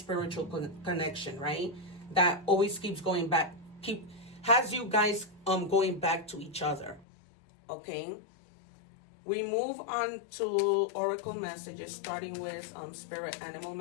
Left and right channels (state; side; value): drops out; right; at 7.1 s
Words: connection, right? That always keeps going back, has you guys going back to each other. Okay? We move on to oracle messages, starting with spirit animal